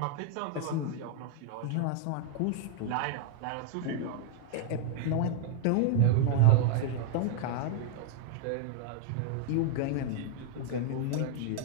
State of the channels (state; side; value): different; both; correlation -0.01